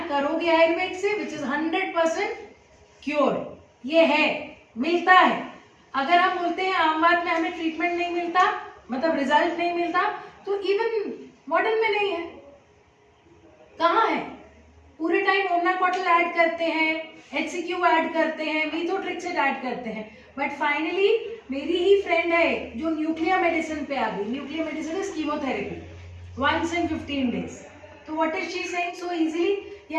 करोगे आयुर्वेद से, विच इज 100% क्योर। ये है, मिलता है। अगर हम बोलते हैं आमवात में हमें ट्रीटमेंट नहीं मिलता, मतलब रिजल्ट नहीं मिलता, तो इवन मॉडर्न में नहीं है। कहाँ है? पूरे टाइम ओमनाकॉटल ऐड करते हैं, HCQ ऐड करते हैं, मीथोट्रिक्सेट ऐड करते हैं, बट फाइनली मेरी ही फ्रेंड है जो न्यूक्लियर मेडिसिन पे आ गई। Nuclear medicine is chemotherapy, 1 in 15 days। तो what is she saying so easily?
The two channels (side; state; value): both; identical; correlation 1.00